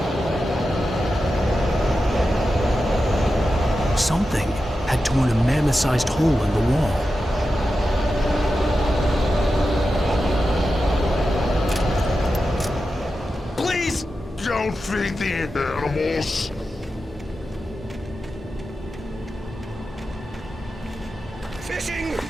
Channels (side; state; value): both; normal; correlation 0.91